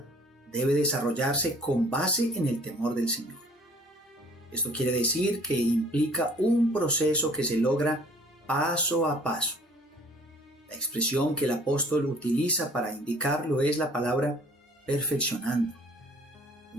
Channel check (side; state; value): both; normal; correlation 0.54